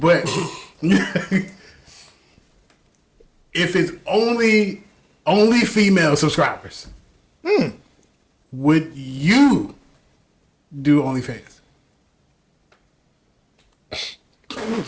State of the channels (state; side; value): identical; both; correlation 1.00